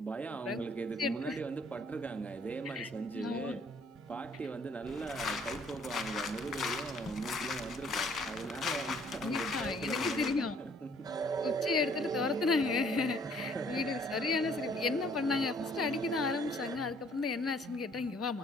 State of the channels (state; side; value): normal; both; correlation 0.60